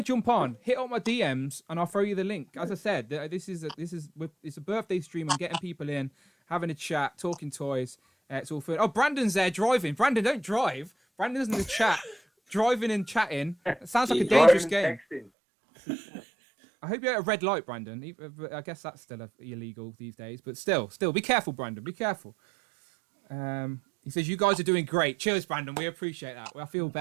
jump on, hit up my DMs, and I'll throw you the link. As I said, it's a birthday stream. I'm getting people in, having a chat, talking toys. It's all fun. Oh, Brandon's there driving. Brandon, don't drive. Brandon's in the chat, driving and chatting. It sounds like a dangerous game. I hope you're at a red light, Brandon. I guess that's still illegal these days, but still, be careful, Brandon. Be careful. He says, you guys are doing great. Cheers, Brandon. We appreciate that. I feel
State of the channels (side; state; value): left; drops out; at 15.3 s